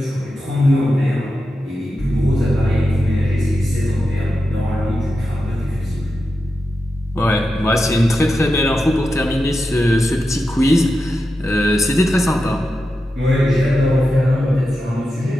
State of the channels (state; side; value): normal; both; correlation 0.89